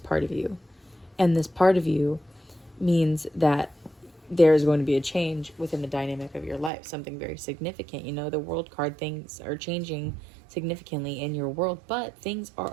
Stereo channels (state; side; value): drops out; left; at 6.7 s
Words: of you. And this part of you means that there's going to be a change within the dynamic of your life, something very significant. You know, the world card, things are changing significantly in your world, but things are